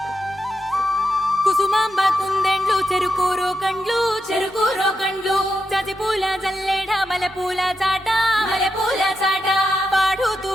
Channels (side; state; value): both; normal; correlation 0.86